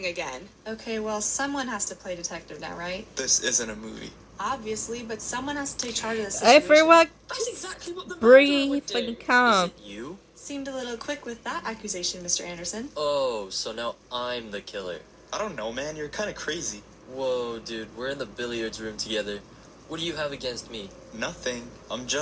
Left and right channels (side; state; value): both; identical; correlation 1.00